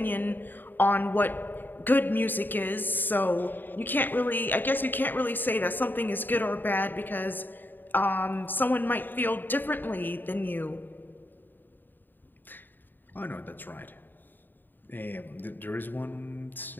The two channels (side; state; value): right; late; 0.091 ms